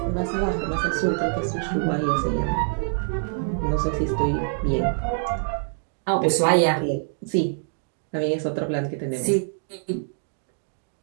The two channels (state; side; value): silent; left; digital silence